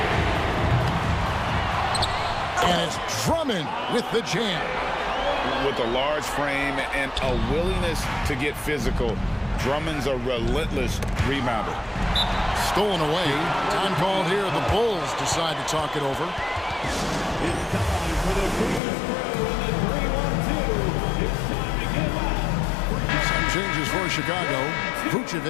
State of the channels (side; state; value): right; drops out; at 18.8 s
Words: And it's Drummond with the jam. With a large frame and a willingness to get physical, Drummond's a relentless rebounder. Stolen away. Time called here. The Bulls decide to talk it over. Some changes for Chicago.